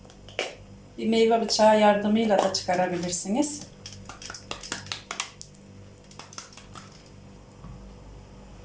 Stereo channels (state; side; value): identical; both; correlation 1.00